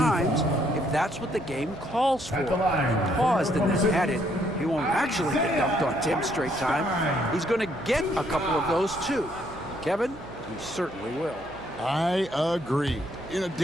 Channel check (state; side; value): noise; right; hum, 17 dB below the sound